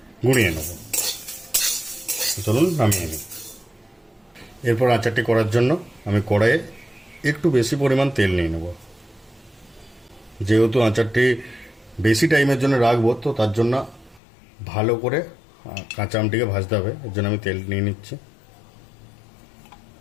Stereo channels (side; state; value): right; drops out; at 14.2 s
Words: গুঁড়িয়ে নেব। চলুন নামিয়ে নিই। এরপর আচারটি করার জন্য আমি কড়াইয়ে একটু বেশি পরিমাণ তেল নিয়ে নেব। যেহেতু আচারটি বেশি টাইমের জন্য রাখবো, তো তার জন্য ভালো করে কাঁচা আমটিকে ভাজতে হবে। এর জন্য আমি তেল নিয়ে নিচ্ছি।